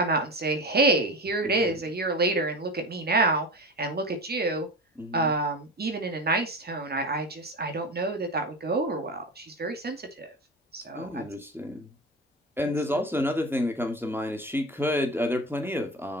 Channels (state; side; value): normal; both; correlation 0.26